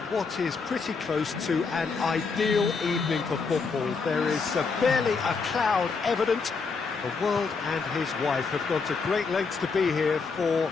what is pretty close to an ideal evening for football. There is barely a cloud evident. The world and his wife have gone to great lengths to be here for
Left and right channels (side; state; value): right; quieter; 4.8 dB